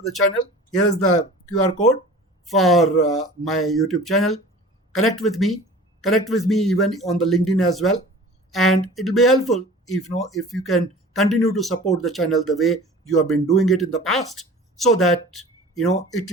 the channel. Here is the QR code for my YouTube channel. Connect with me even on the LinkedIn as well. And it will be helpful if you can continue to support the channel the way you have been doing it in the past, so that it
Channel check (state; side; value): normal; both; correlation 0.42